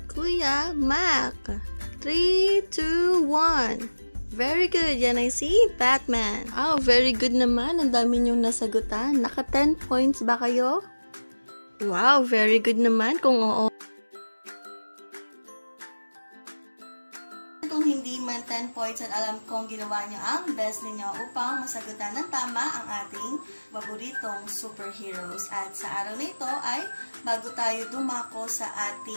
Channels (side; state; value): both; inverted; correlation -1.00